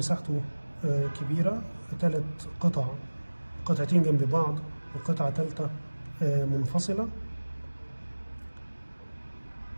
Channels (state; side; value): inverted; both; correlation -1.00